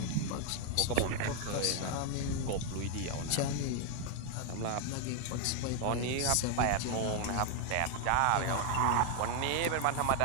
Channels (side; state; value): both; different; correlation 0.00